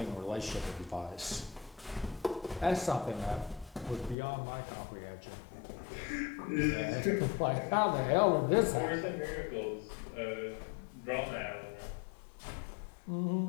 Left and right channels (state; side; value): drops out; right; at 4.2 s